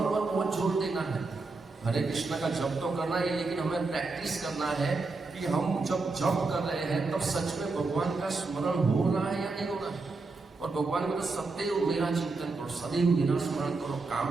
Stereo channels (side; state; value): left; quieter; 3.8 dB